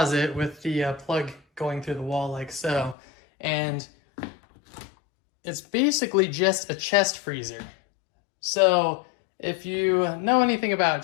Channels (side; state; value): right; drops out; at 3.0 s